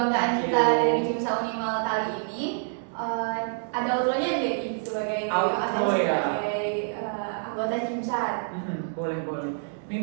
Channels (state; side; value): silent; left; 60 dB below the other